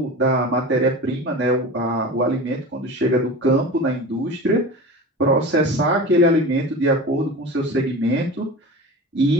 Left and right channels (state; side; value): normal; both; correlation 0.33